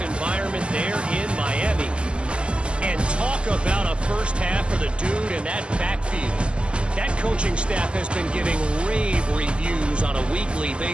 there in Miami. And talk about a first half for the dude in that backfield. That coaching staff has been giving rave reviews on a weekly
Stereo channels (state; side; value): late; left; 0.052 ms